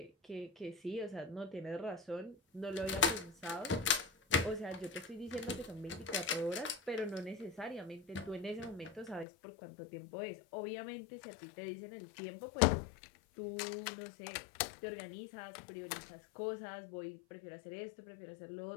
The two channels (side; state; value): right; drops out; at 9.2 s